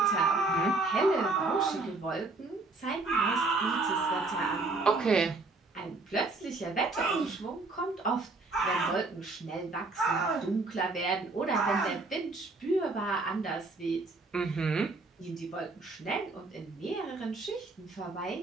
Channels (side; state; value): left; quieter; 3.5 dB